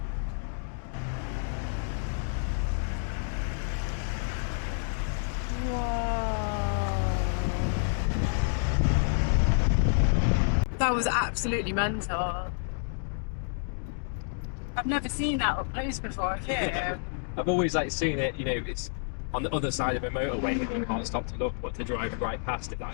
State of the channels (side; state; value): right; silent; digital silence